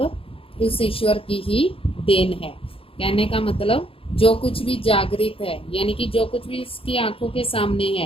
उस ईश्वर की ही देन है। कहने का मतलब जो कुछ भी जागृत है, यानी कि जो कुछ भी उसकी आंखों के सामने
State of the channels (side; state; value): right; late; 0.27 ms